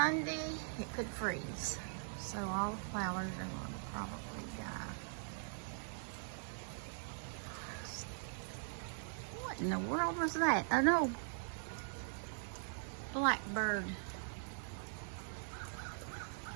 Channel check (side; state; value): left; silent; digital silence